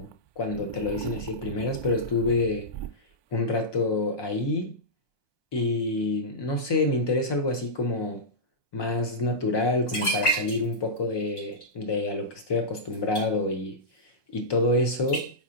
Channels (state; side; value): late; right; 1.2 ms